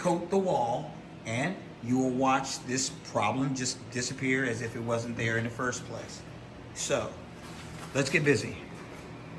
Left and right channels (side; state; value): both; identical; correlation 1.00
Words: the wall, and you will watch this problem just disappear as if it wasn't there in the first place. So let's get busy.